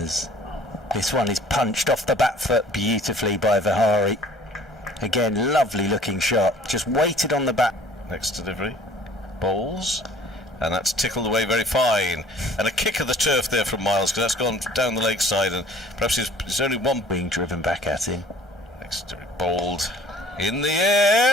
this one is punched off the back foot beautifully by Vihari. Again, lovely looking shot, just waited on the back. Next delivery, bowls, and that's tickled away very fine. And a kick of the turf there from Miles, because that's gone down the leg side, and perhaps there's only one being driven back at him. Next delivery, bowled in the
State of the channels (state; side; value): normal; both; correlation 0.52